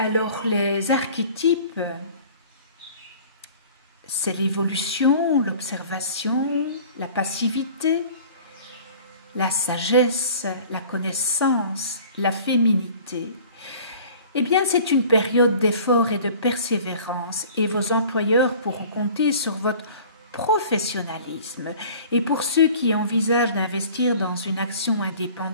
les archétypes, c'est l'évolution, l'observation, la passivité, la sagesse, la connaissance, la féminité. Eh bien, c'est une période d'effort et de persévérance et vos employeurs pourront compter sur votre professionnalisme. Et pour ceux qui envisagent d'investir dans une action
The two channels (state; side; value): inverted; both; correlation -0.46